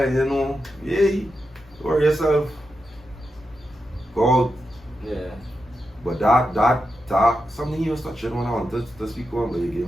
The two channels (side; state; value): both; normal; correlation 0.88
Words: you know, hey, worry yourself. Go. But that something he was touching when I wanted to speak on, but you give